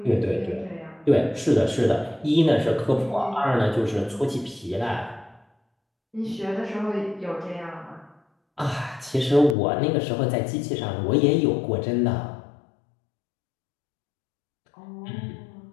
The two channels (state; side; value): drops out; right; at 9.6 s